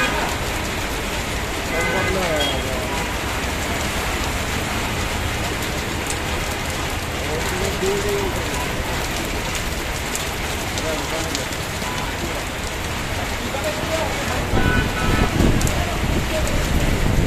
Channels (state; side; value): identical; both; correlation 1.00